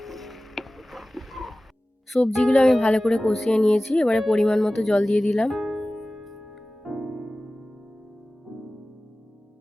সবজিগুলো আমি ভালো করে কষিয়ে নিয়েছি, এবারে পরিমাণ মতো জল দিয়ে দিলাম।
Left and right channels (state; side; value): normal; both; correlation 0.97